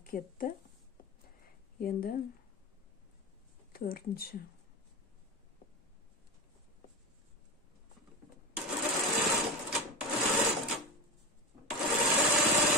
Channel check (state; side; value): normal; both; correlation 0.22